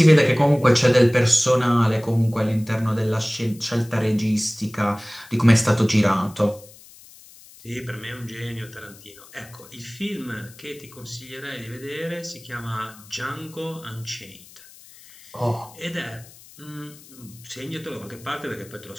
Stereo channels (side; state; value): left; noise; hiss, 22 dB below the sound